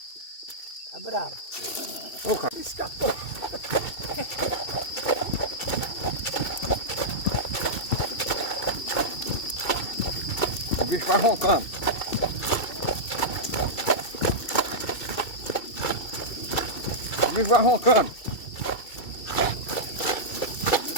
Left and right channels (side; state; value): right; late; 2.6 ms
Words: Tá bravo. Ô, cara. Escapou. O bicho vai roncando. O bicho vai roncando.